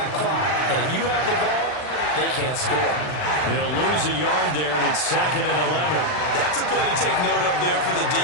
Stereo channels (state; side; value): late; right; 39 ms